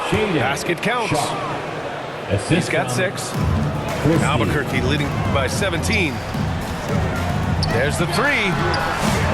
Basket counts. He's got 6. Albuquerque leading by 17. There's the 3.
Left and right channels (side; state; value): both; identical; correlation 1.00